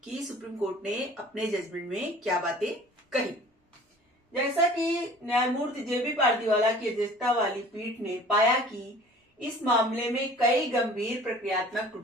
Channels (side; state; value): both; normal; correlation 0.47